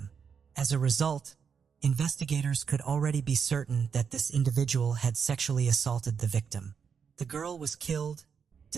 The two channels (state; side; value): quieter; left; 6.6 dB